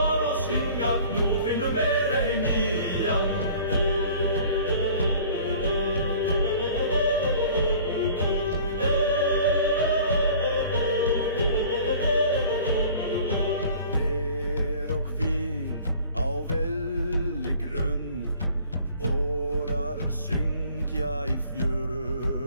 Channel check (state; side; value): inverted; both; correlation -0.49